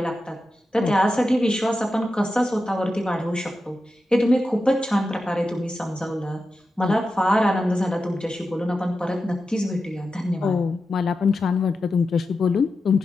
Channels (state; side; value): normal; both; correlation 0.91